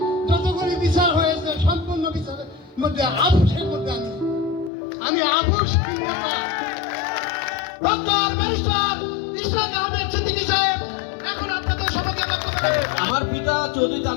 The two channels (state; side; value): drops out; right; at 4.7 s